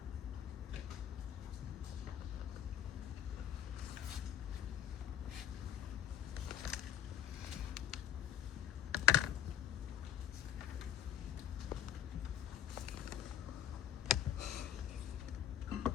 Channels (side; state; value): right; quieter; 9.5 dB